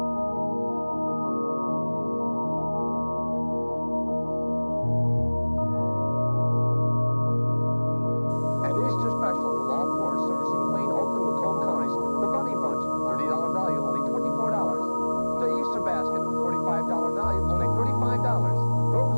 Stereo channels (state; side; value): inverted; both; correlation -1.00